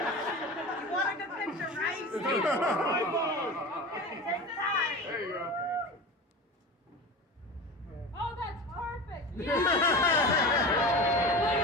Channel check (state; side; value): normal; both; correlation 0.30